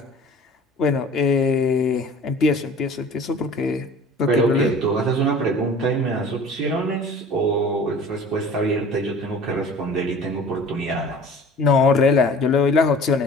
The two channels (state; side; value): normal; both; correlation 0.45